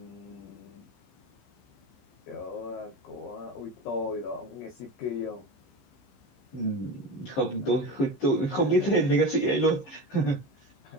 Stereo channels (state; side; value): late; right; 15 ms